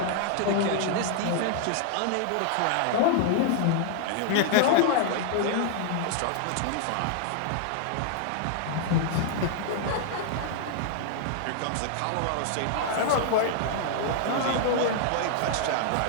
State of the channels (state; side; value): different; both; correlation 0.00